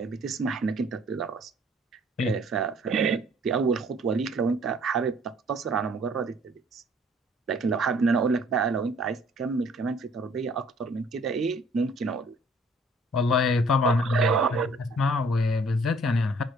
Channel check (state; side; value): normal; both; correlation 0.57